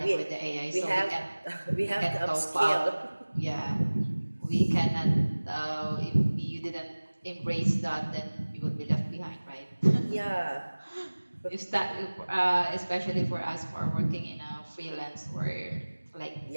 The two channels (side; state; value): both; inverted; correlation -1.00